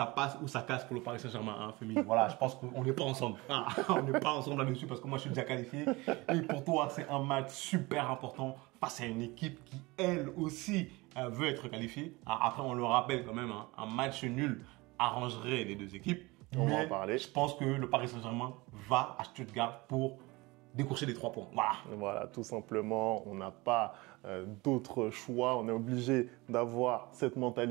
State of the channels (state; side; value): quieter; left; 23.0 dB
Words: passe ou ça casse pour le Paris Saint-Germain, hein, féminin. Voilà, je pense qu'on n'est pas ensemble. Ah, on n'est pas ensemble là-dessus parce que moi je suis déjà qualifié. Et pour toi, c'est un match super important face à une équipe qui, elle aussi, veut être qualifiée. Alors, après, on le rappelle quand même, hein, un match nul arrangerait les deux équipes. On va en parler. Je pense que le Paris Saint-Germain va à Stuttgart pour décrocher les 3 points. Voilà, tout simplement, on n'a pas d'autre choix. On est obligé d'avoir cette